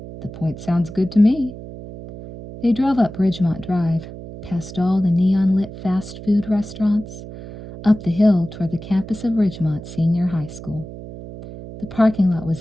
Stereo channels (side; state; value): right; noise; hum, 13 dB below the sound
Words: "The point sounds good to me." They drove up Ridgemont Drive, past all the neon-lit fast food restaurants, up the hill toward the campus of Ridgemont Senior High School. The parking lot